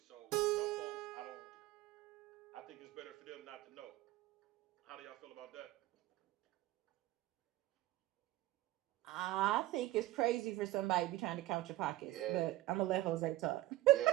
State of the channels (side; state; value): left; quieter; 16.7 dB